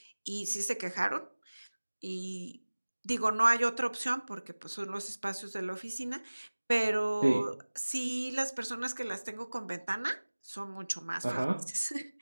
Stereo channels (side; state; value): both; inverted; correlation -1.00